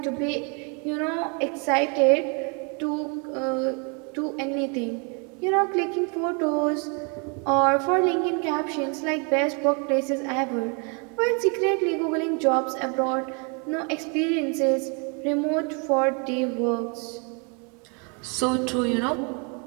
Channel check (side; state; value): left; quieter; 35.6 dB